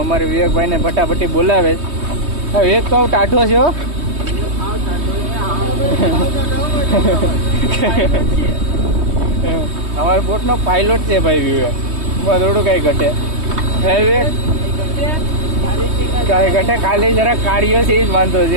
અમારે વિવેકભાઈને ફટાફટી બોલાવે છે. વિવેક તો ટાઢો છે હો. અમારા બોટનો પાયલોટ છે ભાઈ વિવેક. થોડું કાંઈ ઘટે હે વિવેક કાંઈ ઘટે. ખાલી જરા કાર્યો છે એ જ વાંધો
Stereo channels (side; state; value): left; late; 3.2 ms